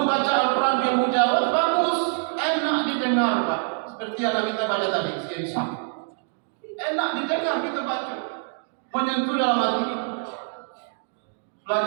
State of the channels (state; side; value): silent; left; 62 dB below the other